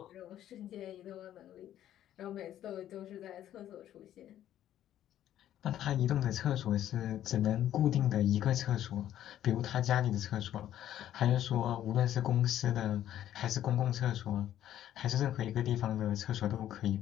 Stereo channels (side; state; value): right; quieter; 11.8 dB